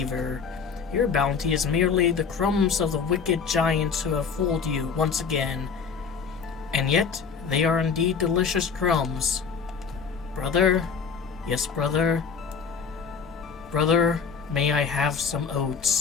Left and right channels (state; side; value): quieter; right; 5.9 dB